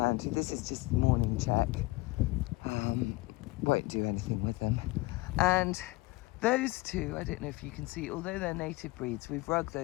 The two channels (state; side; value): quieter; right; 21.5 dB